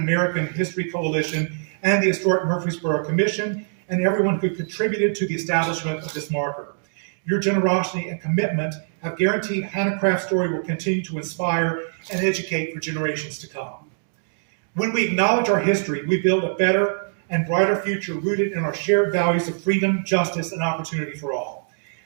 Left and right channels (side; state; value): left; silent; digital silence